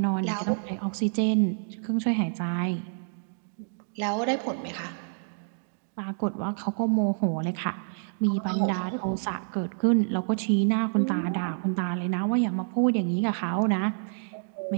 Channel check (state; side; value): silent; left; digital silence